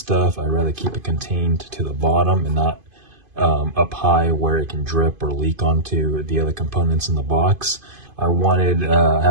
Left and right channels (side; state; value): left; late; 2.5 ms